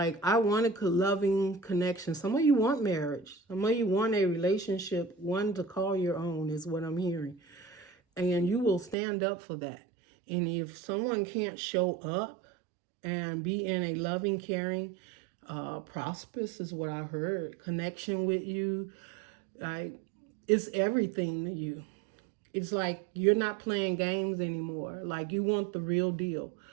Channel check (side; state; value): left; drops out; at 9.0 s